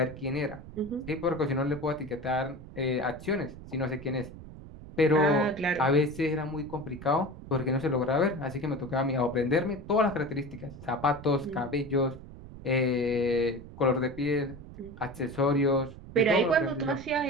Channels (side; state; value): right; noise; rumble, 15 dB below the sound